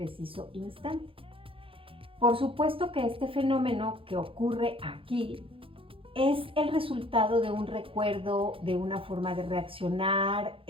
instante. Por supuesto que este fenómeno que ocurre aquí es el resultado de un recuerdo, de una forma de reaccionar,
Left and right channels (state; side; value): late; left; 0.26 ms